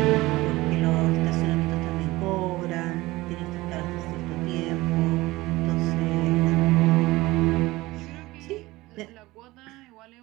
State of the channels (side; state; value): left; quieter; 19.6 dB